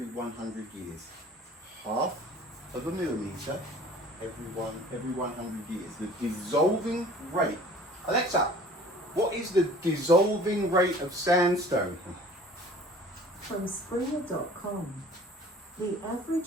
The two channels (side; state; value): both; normal; correlation 0.48